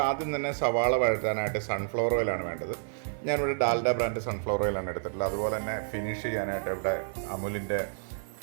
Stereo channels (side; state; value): left; silent; 58 dB below the other